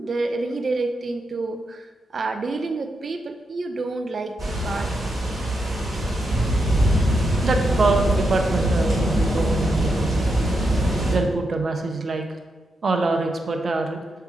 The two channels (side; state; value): both; normal; correlation 0.84